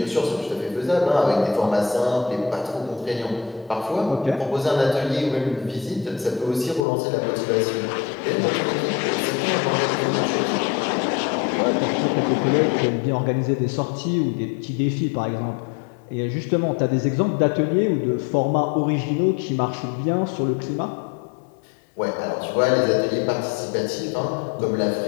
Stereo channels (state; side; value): drops out; right; at 6.9 s